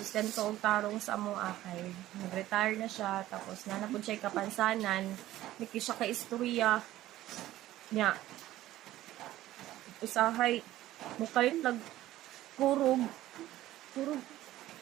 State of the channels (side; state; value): left; quieter; 14.9 dB